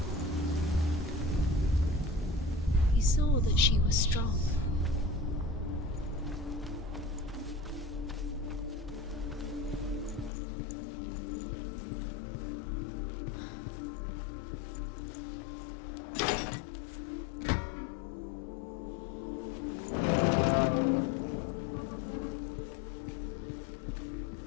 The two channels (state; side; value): drops out; right; at 10.3 s